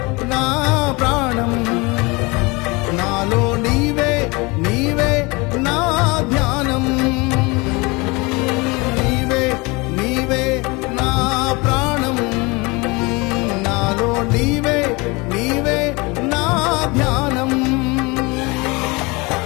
నా ప్రాణం నాలో నీవే నీవే నా ధ్యానం. నీవే నీవే నా ప్రాణం నాలో నీవే నీవే నా ధ్యానం.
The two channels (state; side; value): quieter; right; 26.0 dB